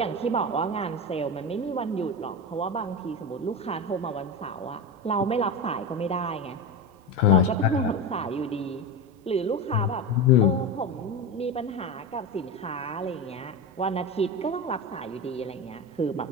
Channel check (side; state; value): both; normal; correlation 0.20